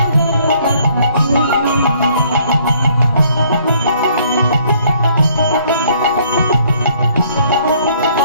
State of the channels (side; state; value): both; inverted; correlation -0.63